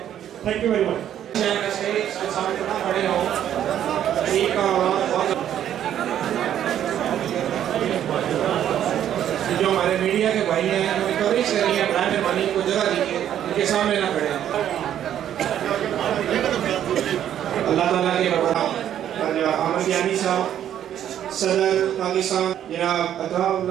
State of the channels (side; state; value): left; quieter; 10.6 dB